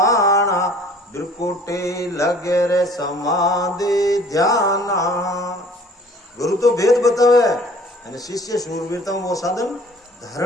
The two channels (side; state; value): both; normal; correlation 0.51